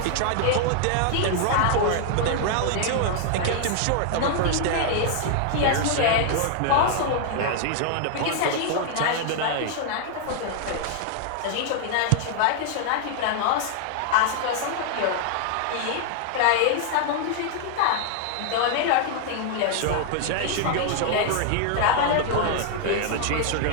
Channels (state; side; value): different; both; correlation 0.00